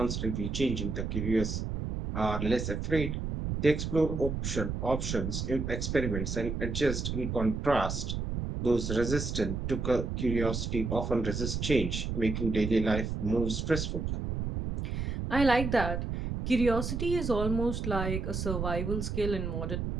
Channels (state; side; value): noise; right; rumble, 3 dB below the sound